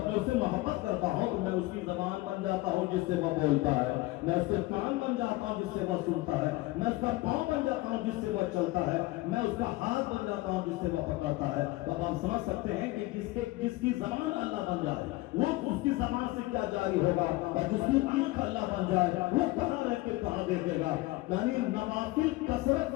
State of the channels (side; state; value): right; quieter; 19.6 dB